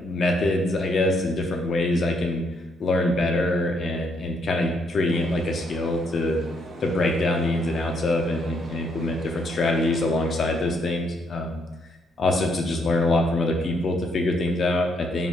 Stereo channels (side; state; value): both; normal; correlation 0.73